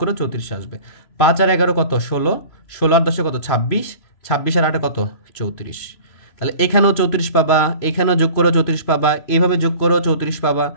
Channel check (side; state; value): right; late; 3.0 ms